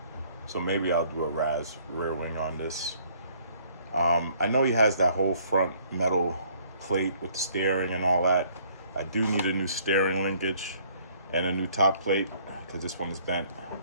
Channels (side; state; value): both; inverted; correlation -0.61